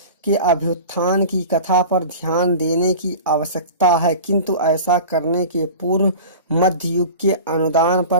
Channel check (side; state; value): both; inverted; correlation -0.36